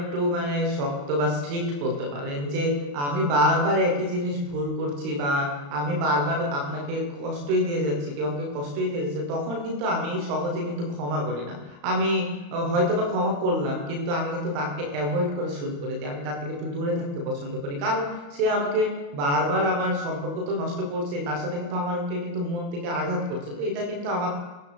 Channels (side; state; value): left; late; 35 ms